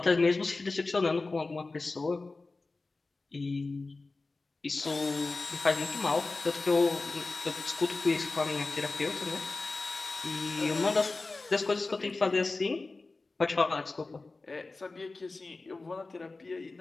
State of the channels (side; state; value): right; quieter; 3.5 dB